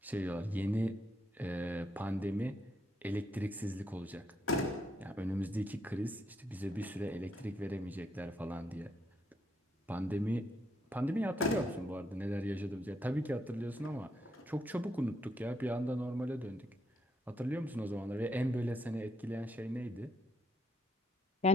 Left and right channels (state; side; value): normal; both; correlation 0.76